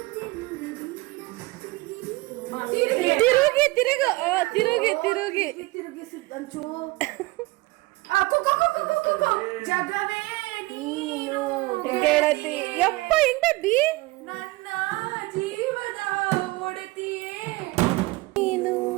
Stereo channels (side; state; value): left; quieter; 22.2 dB